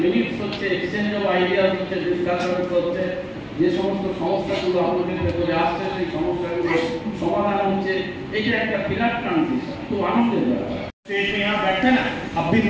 মিনিটস হচ্ছে, এক্সচেঞ্জ অফ আইডিয়াস হচ্ছে, ডিসকাশনস হচ্ছে, যে সমস্ত সমস্যাগুলো আপনাদের ভেতরে আসছে সেই সমস্যাগুলো সমাধান হচ্ছে। এটা একটা বিরাট ট্রানজিশন, খুব আনন্দের ব্যাপার। स्टेज में यहाँ बैठते हैं ना, अब भी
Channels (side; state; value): both; identical; correlation 1.00